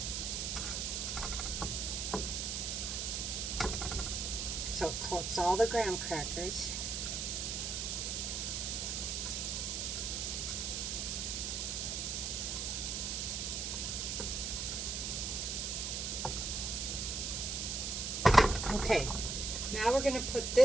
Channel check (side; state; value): right; noise; hiss, 2 dB below the sound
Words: So it coats all the graham crackers. Okay, now we're going to put